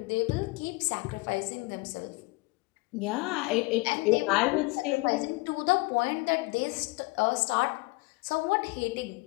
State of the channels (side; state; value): right; quieter; 24.5 dB